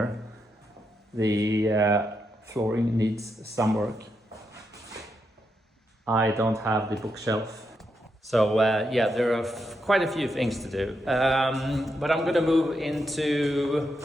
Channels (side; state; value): both; normal; correlation 0.83